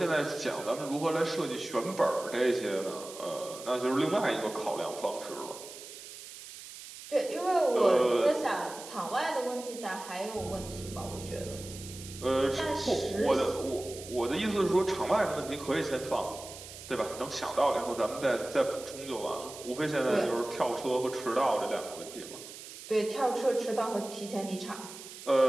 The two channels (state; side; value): noise; right; hiss, 14 dB below the sound